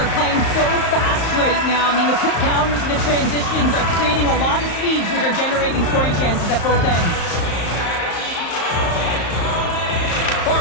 playing so fast right now. I mean, the quick counters and the transitions are creating a lot of speeds, which are generating scoring chances at both ends.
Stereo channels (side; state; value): right; late; 34 ms